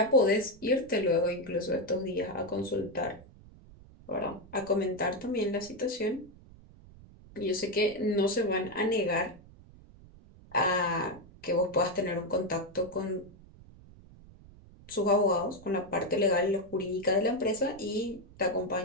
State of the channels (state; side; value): noise; right; rumble, 22 dB below the sound